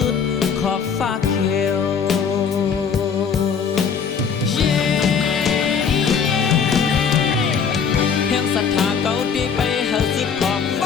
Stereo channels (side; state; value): right; quieter; 6.5 dB